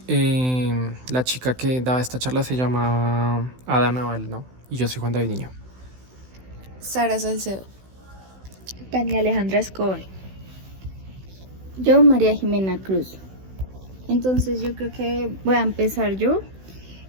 la chica que daba esta charla se llama Ada Naval, ¿no? Y yo soy Juan David Niño. Sara Salcedo. Tania Alejandra Escobar. Yo, María Jimena Cruz. Entonces yo creo que voy a empezar yo.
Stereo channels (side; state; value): left; late; 16 ms